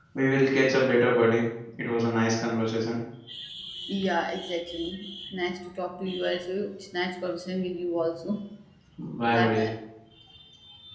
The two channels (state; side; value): identical; both; correlation 1.00